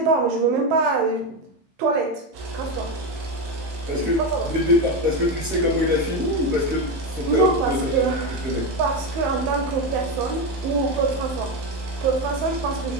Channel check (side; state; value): left; late; 15 ms